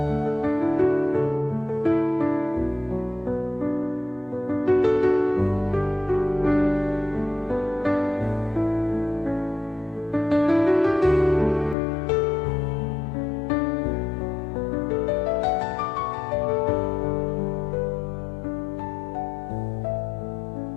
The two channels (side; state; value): right; drops out; at 11.8 s